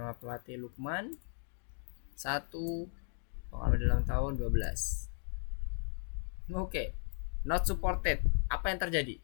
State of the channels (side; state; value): right; silent; 54 dB below the other